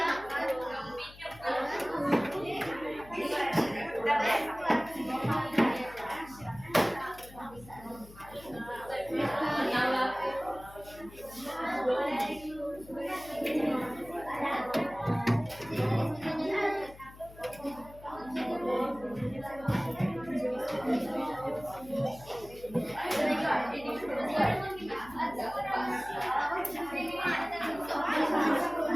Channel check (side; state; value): left; noise; hum, 19 dB below the sound